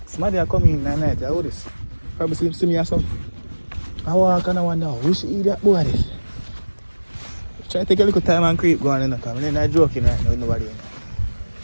Somebody are coming in at night, I this. Probably see me or something. I walk and I wonder, we should eat that boy this. Try to take a little time and creep going in the car. I'm not joking right now with nobody in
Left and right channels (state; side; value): inverted; both; correlation -1.00